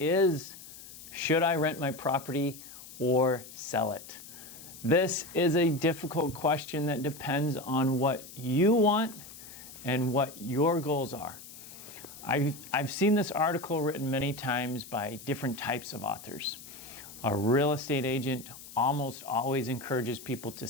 should I rent my property or sell it? This is a difficult question that depends on what you want and what your goals are. I've seen this article written many times by different types of authors. A real estate agent almost always encourages people to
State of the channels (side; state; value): left; noise; hiss, 16 dB below the sound